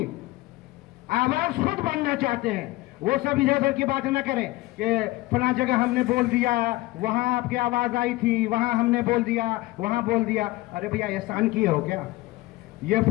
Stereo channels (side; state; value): right; quieter; 19.3 dB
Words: आवाज खुद बनना चाहते हैं। वो सब इधर उधर की बात न करें कि फला जगह हमने बोल दिया, वहां आपकी आवाज आई थी, वहां हमने बोल दिया, वहां बोल दिया। अरे भैया एहसान किए हो क्या? ये